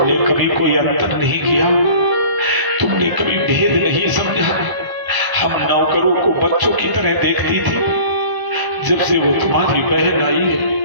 कभी कोई अंतर नहीं किया, तुमने कभी भेद नहीं समझा। हम नौकरों को बच्चों की तरह देखती थी। जब से वो तुम्हारी बहन आई है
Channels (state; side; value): late; left; 1.0 ms